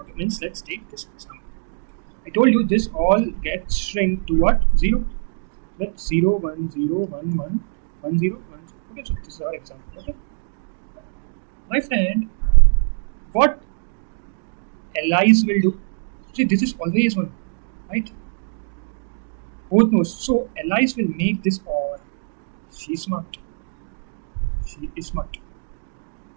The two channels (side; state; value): left; silent; digital silence